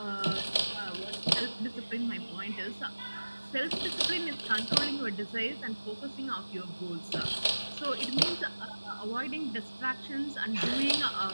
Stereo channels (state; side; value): inverted; both; correlation -1.00